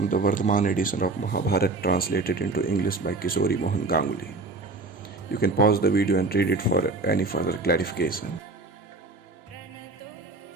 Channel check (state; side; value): quieter; left; 3.3 dB